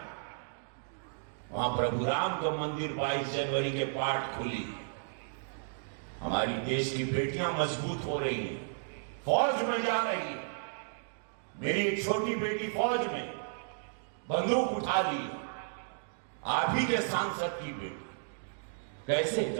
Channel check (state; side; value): silent; left; digital silence